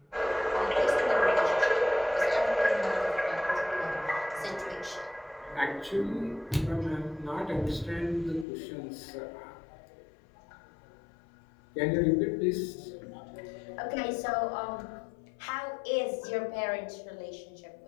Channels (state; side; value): drops out; right; at 8.5 s